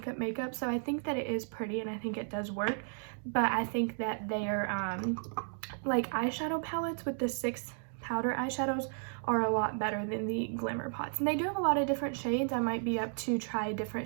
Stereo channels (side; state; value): left; silent; 55 dB below the other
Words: so I think that it is pretty and I think it does work. But I think that their like eyeshadow palettes with the 6 powder eyeshadows are a lot better than the Glimmer Pots, and they do have a lot of different shades. I might be up to try a